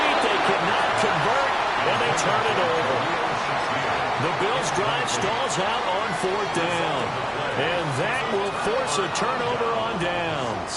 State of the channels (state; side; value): identical; both; correlation 1.00